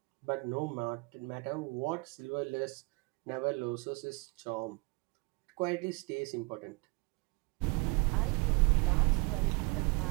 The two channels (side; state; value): left; quieter; 27.8 dB